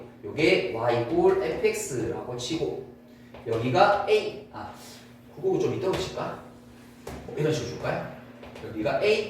요게 y = fx라고 치고 여기가 a 그거 좀 이따로 칠까? 이런 식으로 줄까요? 여기가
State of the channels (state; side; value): identical; both; correlation 1.00